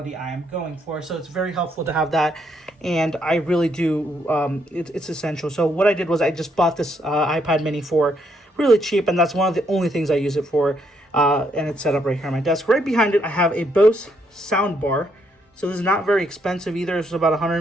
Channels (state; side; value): normal; both; correlation 0.74